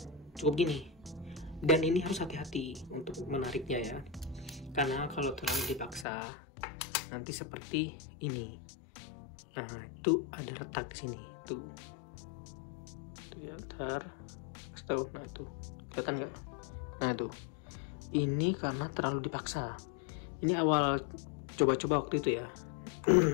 cukup gini. Dan ini harus hati-hati untuk menariknya ya, karena kalau terlalu dipaksa nanti seperti ini. Nah, itu ada retak di sini. Tuh ya, ntar. Nah, tuh kelihatan nggak? Nah, tuh. Ini karena terlalu dipaksa. Ini awal coba-coba waktu itu ya.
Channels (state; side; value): drops out; right; at 6.1 s